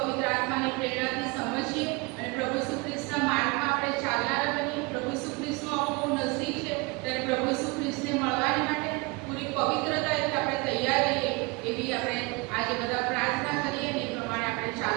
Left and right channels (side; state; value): left; quieter; 26.9 dB